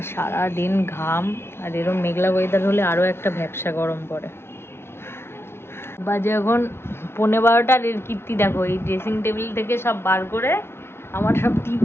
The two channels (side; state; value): right; late; 0.12 ms